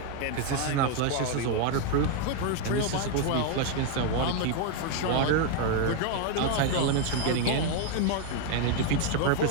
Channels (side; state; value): both; different; correlation 0.01